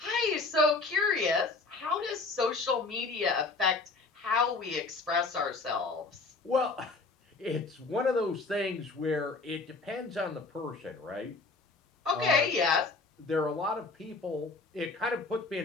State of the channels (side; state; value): right; quieter; 3.8 dB